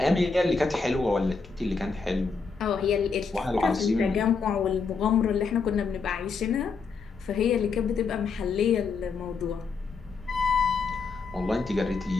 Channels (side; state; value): right; quieter; 4.8 dB